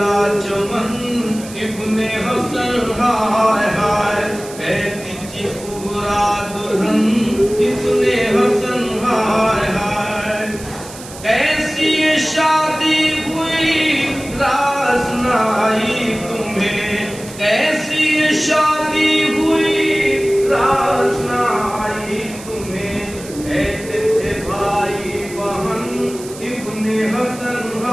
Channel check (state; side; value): noise; right; hiss, 16 dB below the sound